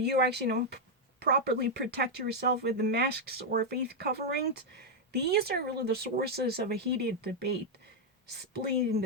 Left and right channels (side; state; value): both; normal; correlation -0.01